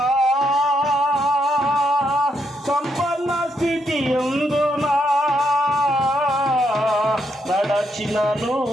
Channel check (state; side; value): normal; both; correlation 0.78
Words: సంపన్న స్థితియందునా నడచినను